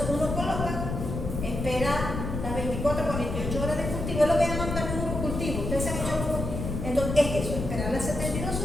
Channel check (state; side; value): noise; left; rumble, 4 dB below the sound